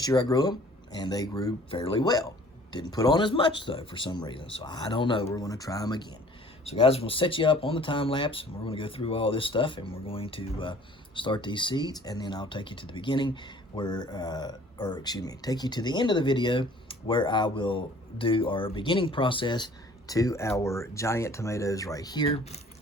year I grew them, and they grew fairly well. Didn't put on as much though for some reason, so I don't know. We're going to try them again. So guys, we'll set you up on the time lapse, and we're going to go through all this stuff, and we're going to start these seeds, and then I'll take you to the beginning where, take you to the end of the video where I will do our beginning process to our giant tomatoes right here,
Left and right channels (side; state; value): both; normal; correlation 0.52